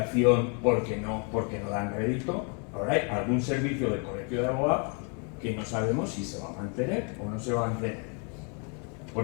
porque no dan rédito. Ahora hay algún servicio del Colegio de Abogados que no sabemos si se va a mantener o no se va a mantener.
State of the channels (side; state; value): right; quieter; 37.9 dB